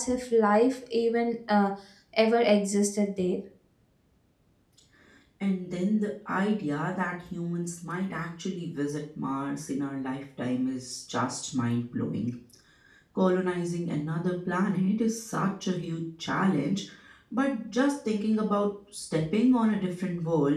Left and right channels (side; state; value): both; identical; correlation 1.00